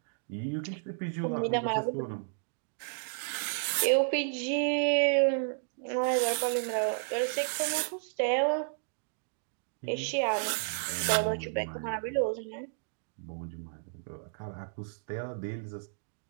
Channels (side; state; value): left; silent; digital silence